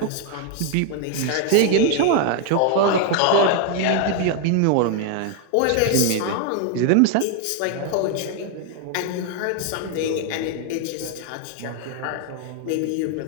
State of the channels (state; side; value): different; both; correlation 0.00